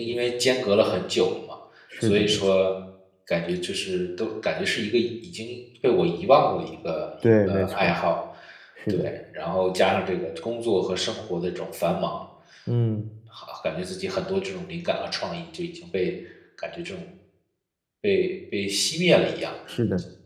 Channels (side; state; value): both; identical; correlation 1.00